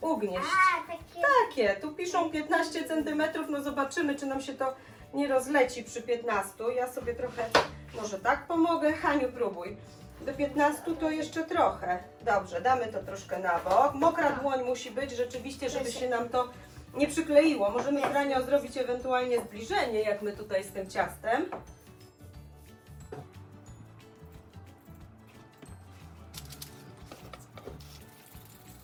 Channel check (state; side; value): identical; both; correlation 1.00